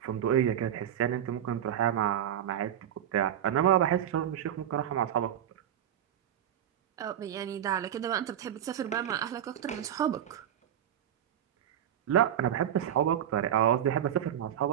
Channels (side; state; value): left; quieter; 10.2 dB